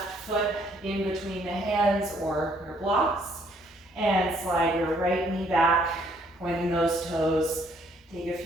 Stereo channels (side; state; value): both; normal; correlation 0.65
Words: foot in between the hands or your blocks, and slide your right knee back, pointing those toes. Take a